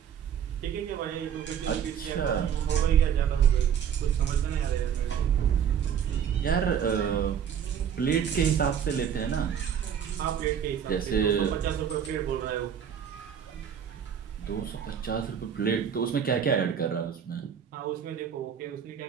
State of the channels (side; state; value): left; quieter; 8.3 dB